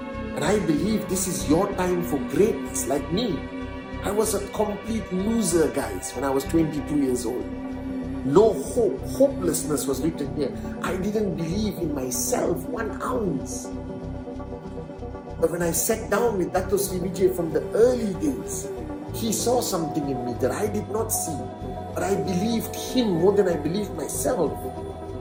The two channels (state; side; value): identical; both; correlation 1.00